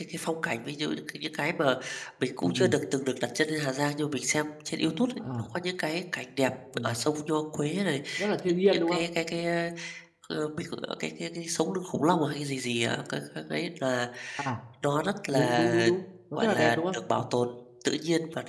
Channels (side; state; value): both; identical; correlation 1.00